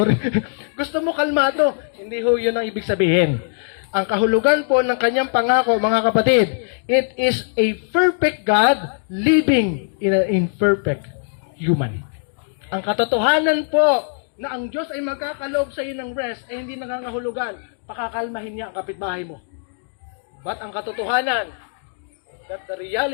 Gusto mo kalmado. Hindi ho yun ang ibig sabihin. Ang kahulugan po ng kanyang pangako, mga kapatid, it is a perfect God living in an imperfect human. Ang katotohanan po na ang Diyos ay magkakaloob sa iyo ng rest ay hindi nangangahulugan, pakakalmahin niya ang kapitbahay mo. But ang katotohanan, that the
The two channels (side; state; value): right; silent; digital silence